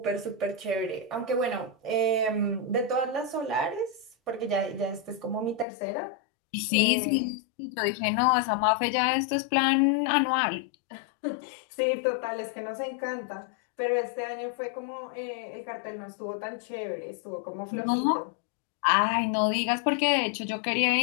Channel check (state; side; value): drops out; right; at 5.7 s